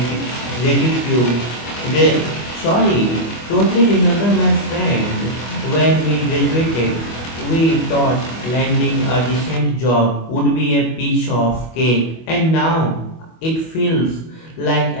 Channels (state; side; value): late; right; 25 ms